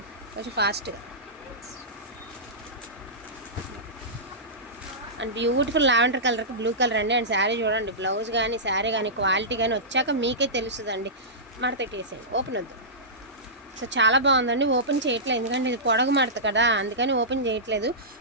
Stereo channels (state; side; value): normal; both; correlation -0.16